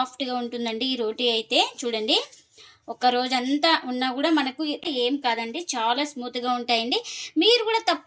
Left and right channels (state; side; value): identical; both; correlation 1.00